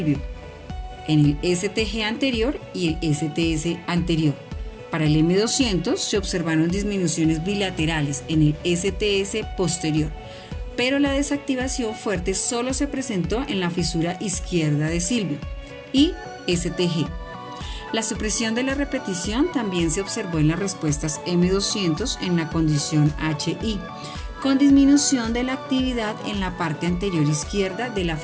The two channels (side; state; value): both; identical; correlation 1.00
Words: en el STG anterior y el STS anterior, Para el M200 se observaron disminuciones bilaterales en el STS posterior, pero la desactivación fuerte solo se presentó en la fisura izquierda de Silvio y STG. La supresión de la repetición también se observó en las respuestas M200 en la condición HI, con disminución de la actividad en la parte anterior izquierda de la